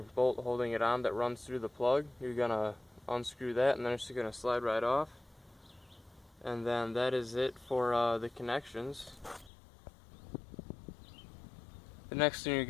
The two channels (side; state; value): right; drops out; at 9.5 s